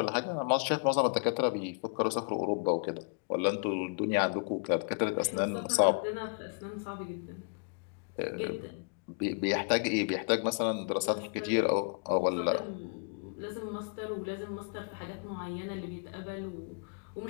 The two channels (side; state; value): right; quieter; 38.8 dB